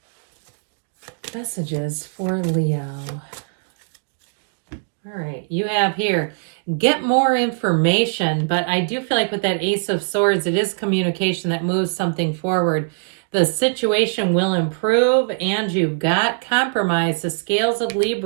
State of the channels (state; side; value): silent; left; digital silence